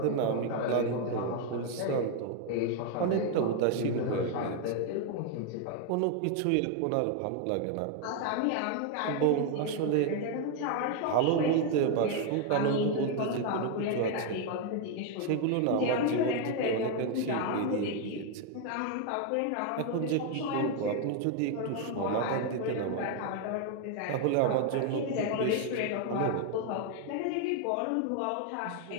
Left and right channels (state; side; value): different; both; correlation 0.01